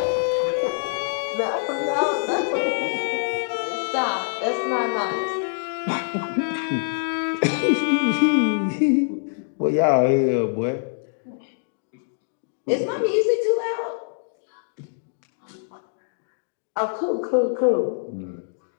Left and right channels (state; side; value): silent; right; digital silence